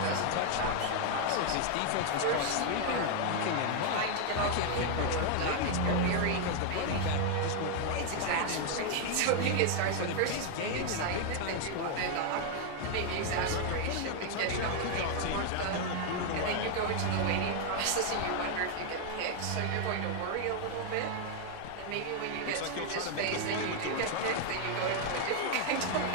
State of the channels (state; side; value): different; both; correlation 0.00